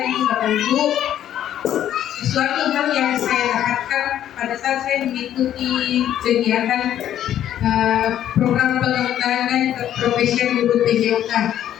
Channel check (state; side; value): quieter; right; 11.2 dB